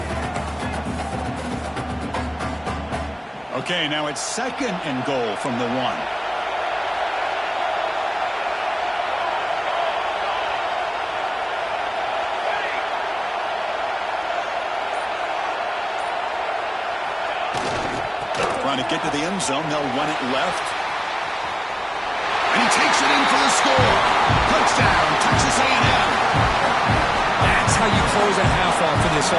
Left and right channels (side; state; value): both; identical; correlation 1.00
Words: Okay, now it's second and goal from the 1. Trying to get to the end zone. They'll run it left. And he takes it in for the score. Touchdown, Texas A&M. That's how you close a half off for this